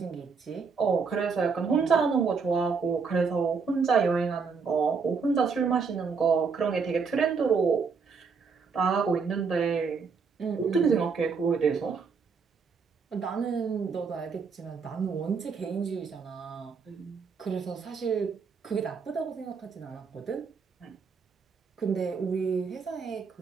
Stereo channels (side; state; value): left; quieter; 5.3 dB